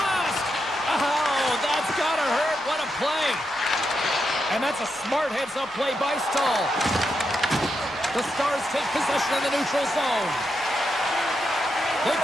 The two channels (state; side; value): noise; left; rumble, 29 dB below the sound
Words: Oh, that's gotta hurt. What a play. And that's a smart heads-up play by Stahl. The Stars take possession of the neutral zone. They've